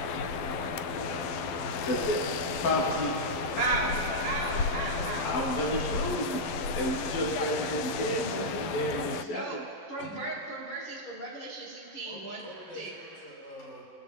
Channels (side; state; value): right; late; 12 ms